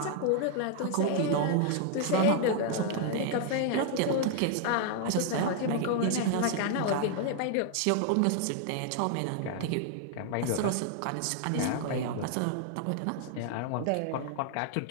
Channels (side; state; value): both; different; correlation 0.00